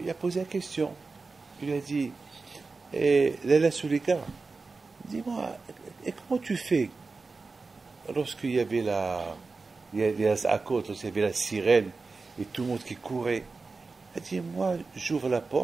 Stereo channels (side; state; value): left; quieter; 4.1 dB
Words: a posé la question. Il lui a dit, Léla Sulika, dis-moi, et comment tu fais lorsqu'il y avait à côte, lorsqu'il y avait la sirène et tout le monde qui courait? Elle dit, moi, j'ouvre la